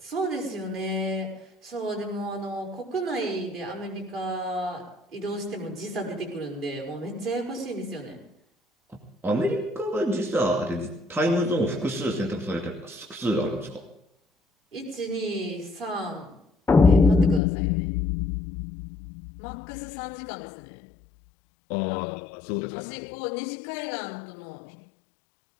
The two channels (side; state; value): right; drops out; at 17.4 s